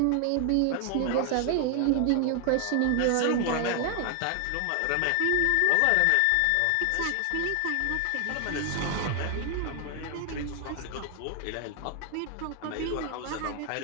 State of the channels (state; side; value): different; both; correlation 0.00